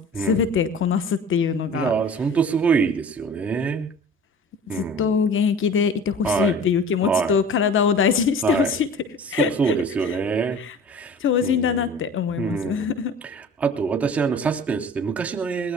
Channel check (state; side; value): normal; both; correlation 0.41